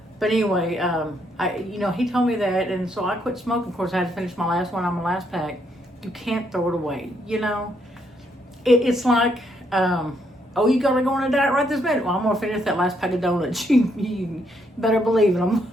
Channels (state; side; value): normal; both; correlation 0.74